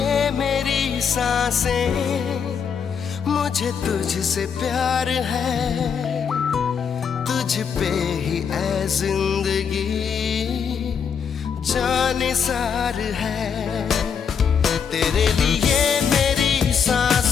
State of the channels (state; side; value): quieter; right; 6.8 dB